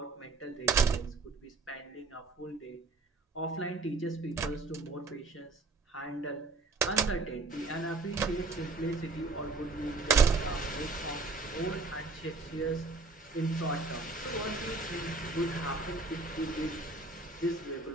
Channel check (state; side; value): quieter; left; 3.8 dB